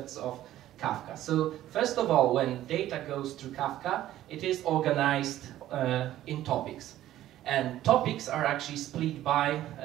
of Kafka. So first of all, when data goes through Kafka, it is organized in topics. And topics are actually split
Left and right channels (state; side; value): quieter; left; 13.5 dB